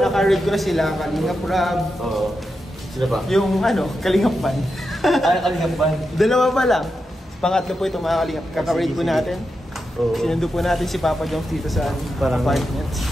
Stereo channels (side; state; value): both; normal; correlation 0.88